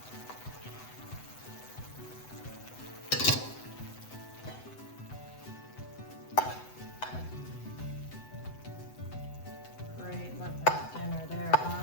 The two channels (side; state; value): right; late; 7.9 ms